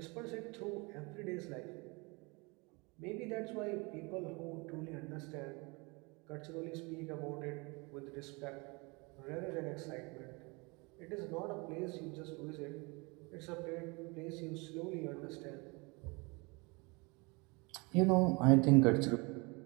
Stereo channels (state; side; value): quieter; left; 27.9 dB